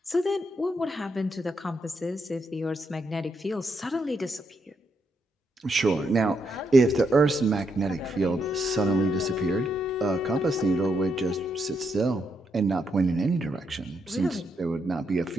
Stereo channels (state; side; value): normal; both; correlation 0.79